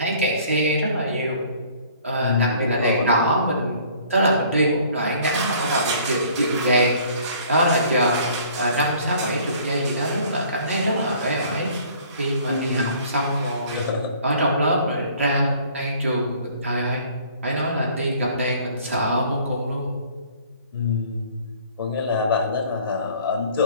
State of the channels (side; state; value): both; inverted; correlation -0.54